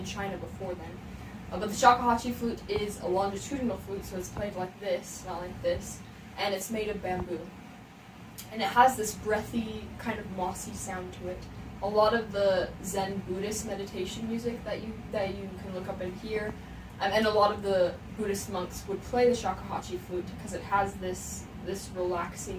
China before then. But the Shakuhachi flute is a longitudinal flute, so it's played like this, not like this, and it's made of bamboo. And it has this breathy, kind of mossy sound to it. A lot of the Zen Buddhist meditation music that you can look up and hear, and a lot of the Buddhist monks would play the Shakuhachi flute because it has this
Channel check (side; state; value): both; identical; correlation 1.00